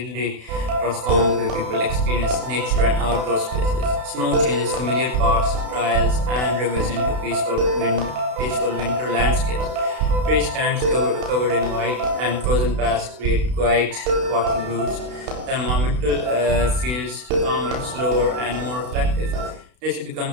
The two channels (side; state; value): left; late; 32 ms